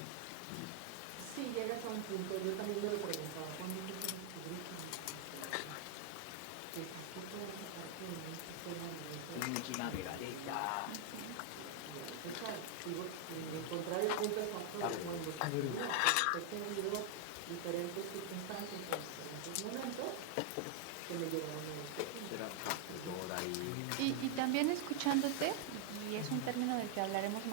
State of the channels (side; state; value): both; different; correlation 0.00